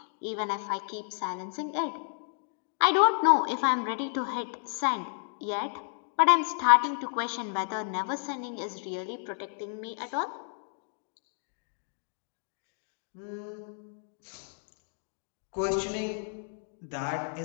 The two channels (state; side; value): silent; right; digital silence